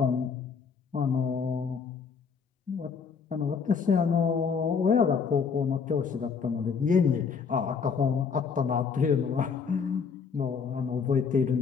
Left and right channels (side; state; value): right; quieter; 5.9 dB